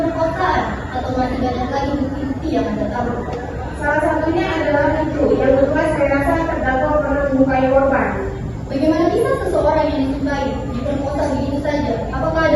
atau masih banyak lagi bukti-bukti yang Anda tahu? Salah satunya adalah itu. Yang kedua, saya rasa terdakwa pernah menyukai korban. Bagaimana bisa seseorang yang disukai diperkosa begitu saja? Apakah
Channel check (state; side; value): identical; both; correlation 1.00